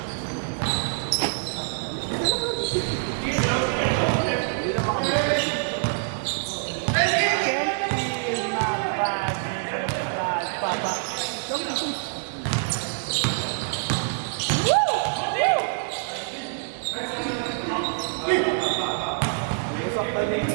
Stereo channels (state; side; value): silent; left; digital silence